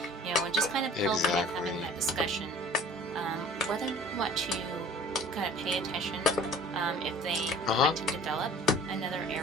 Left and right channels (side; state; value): both; normal; correlation 0.47